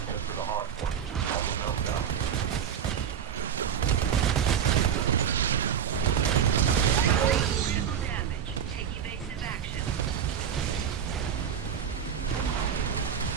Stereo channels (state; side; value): quieter; left; 8.3 dB